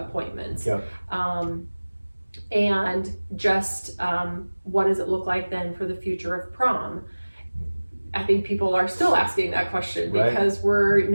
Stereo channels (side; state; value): both; inverted; correlation -1.00